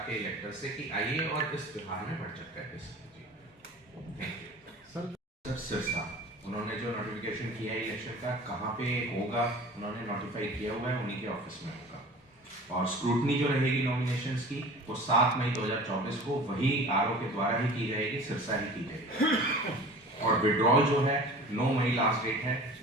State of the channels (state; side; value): normal; both; correlation 0.41